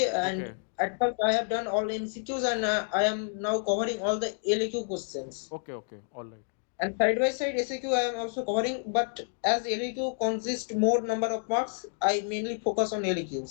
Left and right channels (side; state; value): right; silent; digital silence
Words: okay and at first I have done all MCQs, and I am now covering all the LAQ questions. Okay okay all right. And side by side SAQ I am also covering, but as LAQ consists more number of marks, I mainly focus on